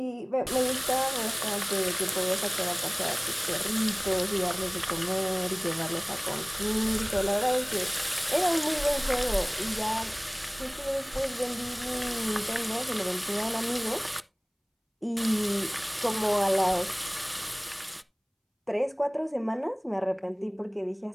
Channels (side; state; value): both; identical; correlation 1.00